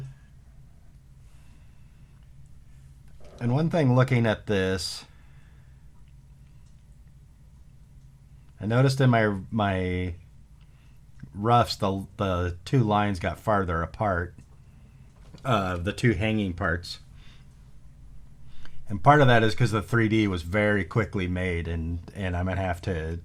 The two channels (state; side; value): identical; both; correlation 1.00